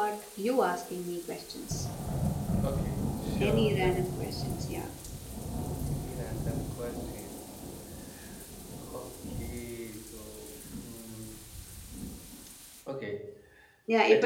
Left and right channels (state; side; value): identical; both; correlation 1.00